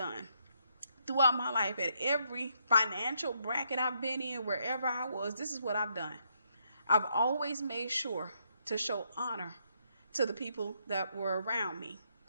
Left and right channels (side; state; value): both; inverted; correlation -0.76